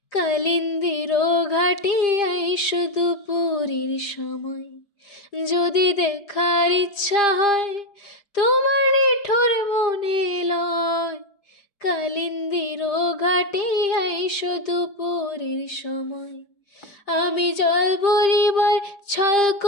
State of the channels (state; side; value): late; right; 5.0 ms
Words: কালিন্দির ঘাটে আইসো দুপুরের সময়। যদি দেখার ইচ্ছা হয় তোমার নিঠুর মনে লয়, কালিন্দির ঘাটে আইসো দুপুরের সময়। আমি জল ভরিবার ছল